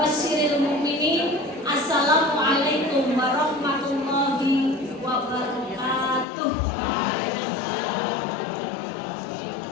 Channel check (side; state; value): right; drops out; at 6.2 s